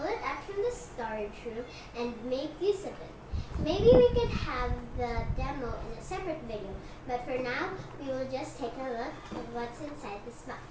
it out from the storage room and make use of it. Maybe we could have the demo in a separate video, but for now, we will just take a look at what's inside this box.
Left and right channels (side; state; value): both; identical; correlation 1.00